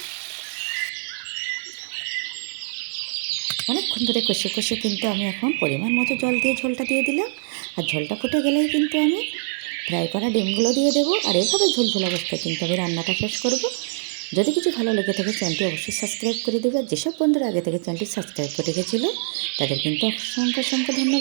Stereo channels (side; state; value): left; silent; digital silence